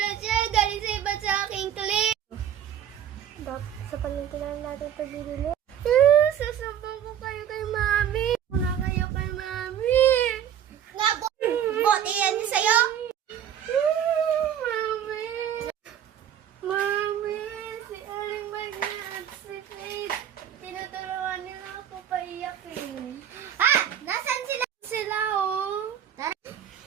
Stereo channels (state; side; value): quieter; left; 9.7 dB